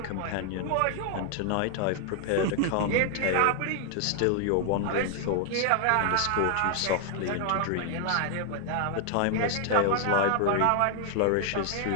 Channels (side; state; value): both; different; correlation 0.00